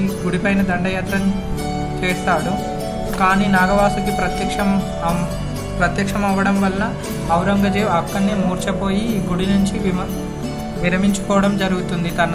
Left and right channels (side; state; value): both; identical; correlation 1.00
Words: గుడిపైన దండయాత్ర చేస్తాడు. కానీ నాగవాసుకి ప్రత్యక్షం అవ్వడం వల్ల ఔరంగజేబు అక్కడనే మూర్ఛపోయి ఈ గుడి నుంచి విరమించుకోవడం జరుగుతుంది తన